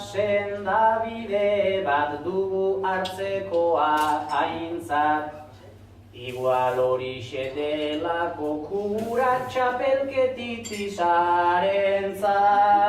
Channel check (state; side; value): identical; both; correlation 1.00